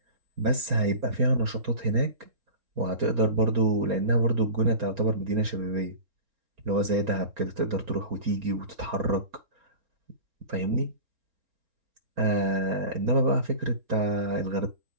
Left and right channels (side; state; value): left; late; 4.3 ms